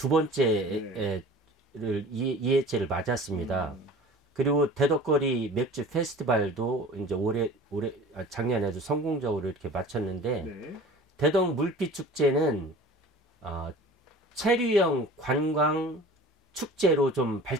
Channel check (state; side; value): normal; both; correlation 0.42